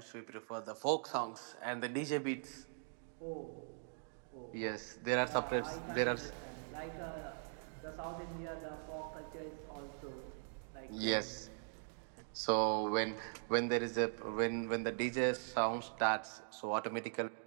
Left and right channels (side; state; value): left; silent; digital silence